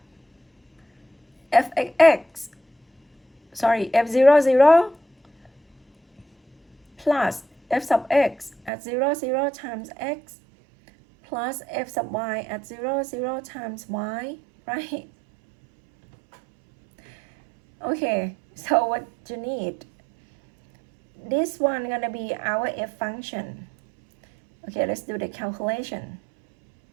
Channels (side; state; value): left; drops out; at 8.7 s